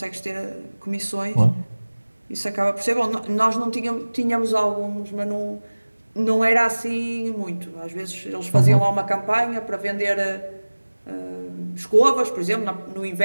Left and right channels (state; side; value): inverted; both; correlation -1.00